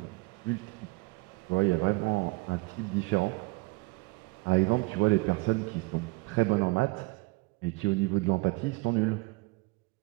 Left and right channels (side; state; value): left; quieter; 24.4 dB